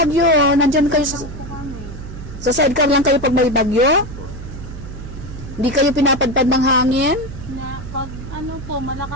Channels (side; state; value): right; noise; hum, 12 dB below the sound